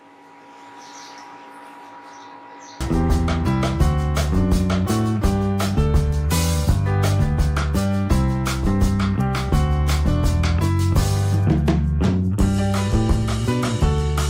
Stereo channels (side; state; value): both; identical; correlation 1.00